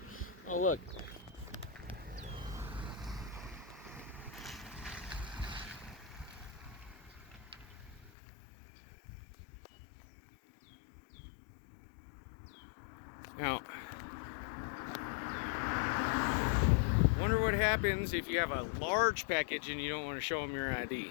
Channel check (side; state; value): right; drops out; at 8.1 s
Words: Oh, look. Now, wonder what happens if you have a large package and you don't want to show them your